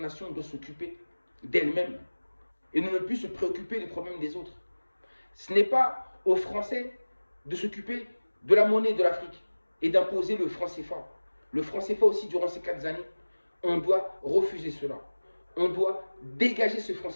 doit s'occuper d'elle-même et ne plus se préoccuper des problèmes des autres. Ce n'est pas aux Français de s'occuper de la monnaie de l'Afrique et d'imposer le franc CFA. Le franc CFA aussi, durant ces 4 années, on doit refuser cela. On doit dégager ce franc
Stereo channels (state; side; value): inverted; both; correlation -1.00